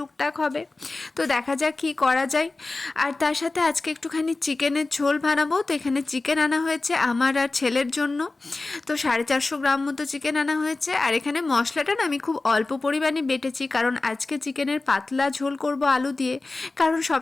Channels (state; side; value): quieter; right; 3.3 dB